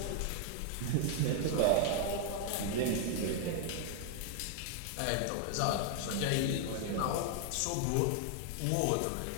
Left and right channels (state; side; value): different; both; correlation 0.00